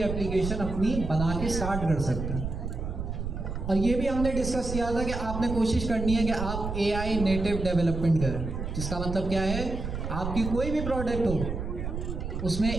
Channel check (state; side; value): noise; right; rumble, 5 dB below the sound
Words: अपनी बना के स्टार्ट कर सकते हैं। और ये भी हमने डिस्कस किया था कि आपने कोशिश करनी है कि आप AI नेटिव डेवलपमेंट करें, जिसका मतलब क्या है, आपकी कोई भी प्रोडक्ट हो उसमें